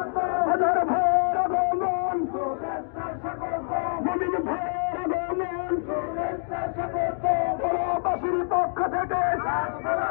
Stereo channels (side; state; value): right; silent; digital silence